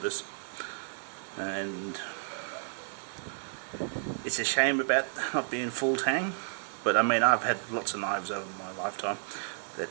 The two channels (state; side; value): silent; left; digital silence